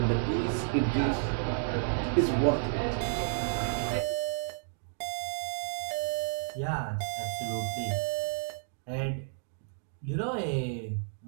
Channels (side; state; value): left; silent; digital silence